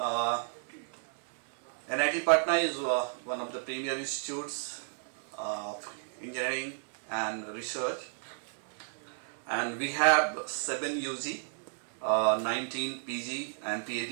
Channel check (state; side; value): silent; left; 56 dB below the other